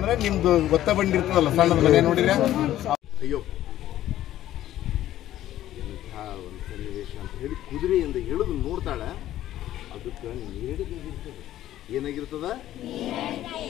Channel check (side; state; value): right; quieter; 13.2 dB